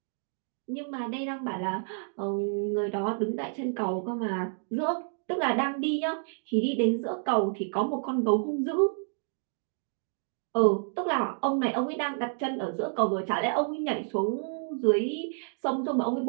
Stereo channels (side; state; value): left; silent; 58 dB below the other